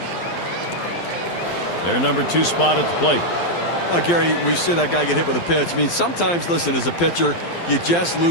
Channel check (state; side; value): late; right; 12 ms